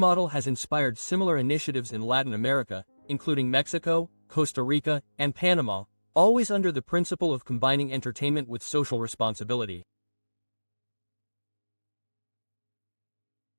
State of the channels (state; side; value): inverted; both; correlation -1.00